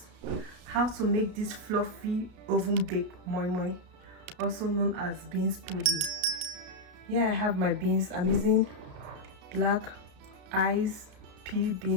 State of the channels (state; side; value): late; left; 33 ms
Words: how to make this fluffy oven baked moi moi, also known as beans pudding. Here I have my beans. I'm using Blackeye pea